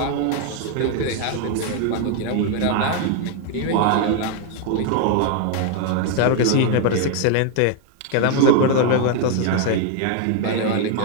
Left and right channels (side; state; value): both; different; correlation 0.01